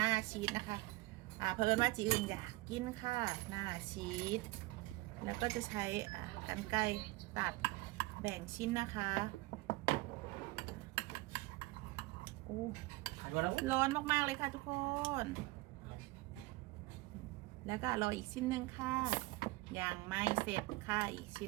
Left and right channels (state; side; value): quieter; left; 20.7 dB